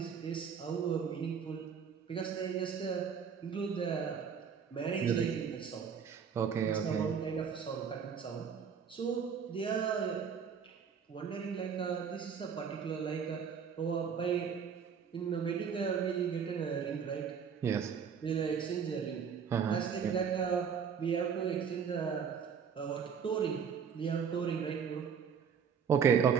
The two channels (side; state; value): left; quieter; 6.9 dB